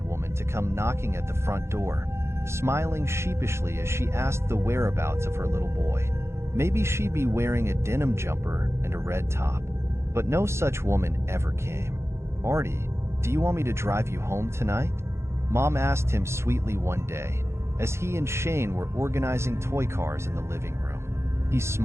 woman to come knocking at the front door, smiling sheepishly as she asked the whereabouts of her little boy. Maybe she'd be wearing a denim jumper and a red top. But no such woman ever came. "Artie, do you want me to drive you home tonight?" Mom asked him sweetly one day, as he and Shane were organizing toy cars in the living room. He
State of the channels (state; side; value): late; left; 0.13 ms